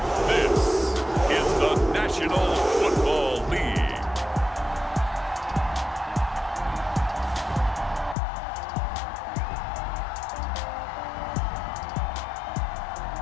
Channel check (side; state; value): right; drops out; at 8.2 s